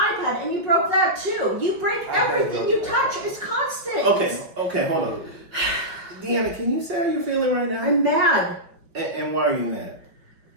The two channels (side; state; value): left; late; 5.5 ms